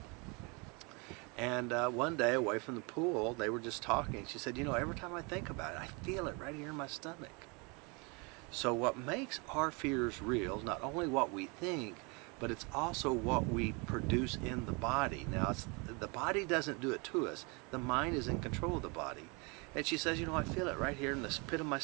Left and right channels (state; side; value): quieter; left; 30.4 dB